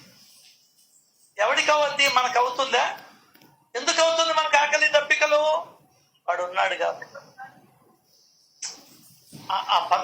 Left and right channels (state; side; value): identical; both; correlation 1.00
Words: ఎవరికి అవద్ది? మనకు అవుతుందా? ఎందుకు అవుతుంది మనకు ఆకలి దప్పికలు? వాడు ఉన్నాడు కాబట్టి. ఆ